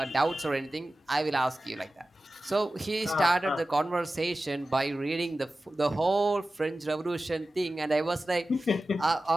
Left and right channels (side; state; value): both; normal; correlation 0.95